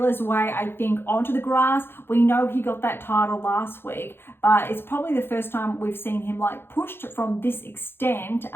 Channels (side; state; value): right; late; 0.11 ms